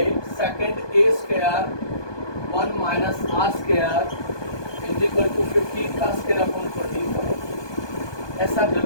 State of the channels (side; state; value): right; late; 1.2 ms